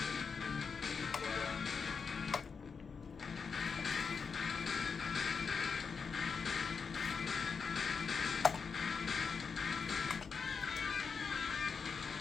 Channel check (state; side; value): quieter; right; 5.6 dB